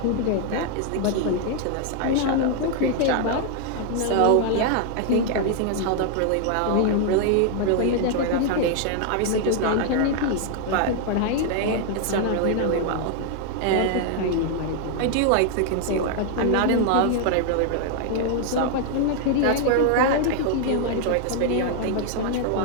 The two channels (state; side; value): different; both; correlation 0.00